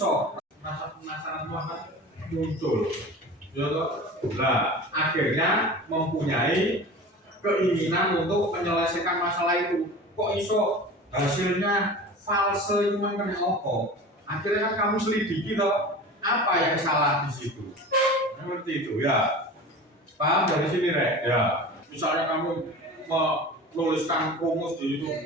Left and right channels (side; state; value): both; normal; correlation 0.35